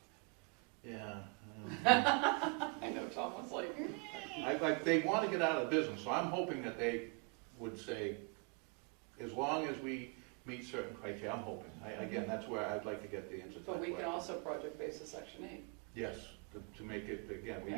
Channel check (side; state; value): left; quieter; 32.7 dB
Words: Yeah. I know Tom was like, They want to get out of the business, so I'm hoping that they would say, as long as we meet certain criteria, I'm hoping. Again, that's where I'd like to get the answer to that but we can question. also project basis Section 8. Yes, to make it, again, we